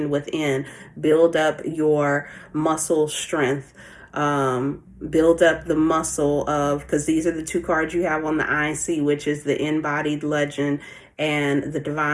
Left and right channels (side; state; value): both; identical; correlation 1.00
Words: within. Build up your muscle strength. Build up the muscle of, because these are the two cards you have on the IC, which is the InBodied Legend and the